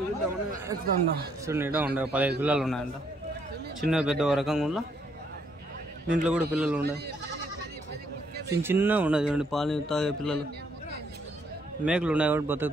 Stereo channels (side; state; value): both; normal; correlation 0.71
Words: ఎక్కుతా. చూడండి, ఇడా ఉండే 15 పిల్లలు ఉన్నాయంట. చిన్న పెద్ద రకంగా ఉండ దీంట్లో కూడా పిల్లలు ఉన్నాయి. చిన్న ఉన్నాయి చూడండి, పాలు తాగే పిల్లలు. మేకలు ఉన్నాయి కాబట్టి